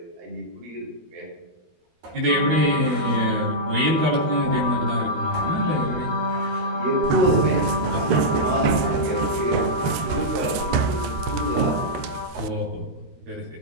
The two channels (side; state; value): left; late; 13 ms